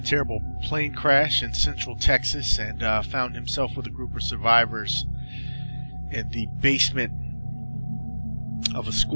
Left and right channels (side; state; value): both; inverted; correlation -1.00